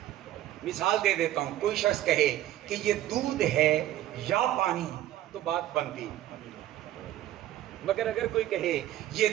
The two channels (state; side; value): quieter; left; 13.3 dB